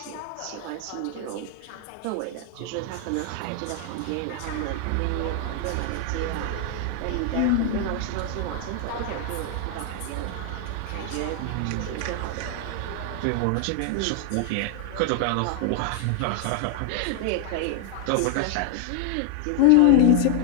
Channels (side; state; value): both; different; correlation 0.00